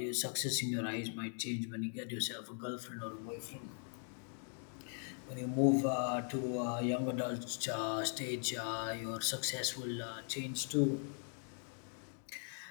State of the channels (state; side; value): silent; right; 51 dB below the other